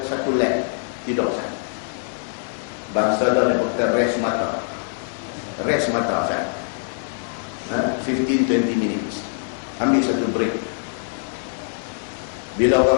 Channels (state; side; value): silent; right; digital silence